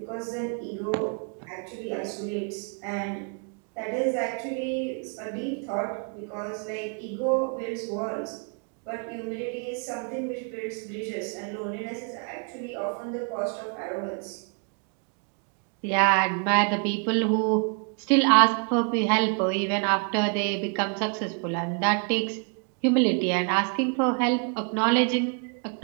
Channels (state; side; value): quieter; left; 39.4 dB